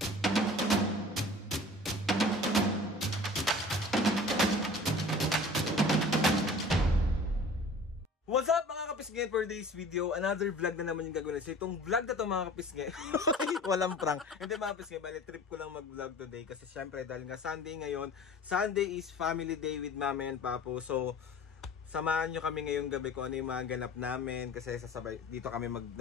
What's up mga kapisngin, for today's video, another vlog na naman yung gagawin. So itong vlog na to mga kapisngin, walang prank. Hindi mga kapisngin, bali trip ko lang mag-vlog today kasi syempre dahil nga Sunday ngayon. Sunday is family day with Mami and Papo. So samahan nyo kami ngayong gabi kung ano yung mga ganap namin kasi sasabay dito kami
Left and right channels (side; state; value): both; normal; correlation 0.44